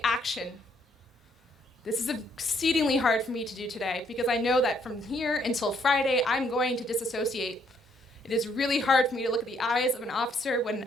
action. This is exceedingly hard for me to do today because I know that from here until Friday, I'm going to disassociate. It is really hard for me to look at the eyes of an officer when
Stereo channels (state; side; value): normal; both; correlation 0.69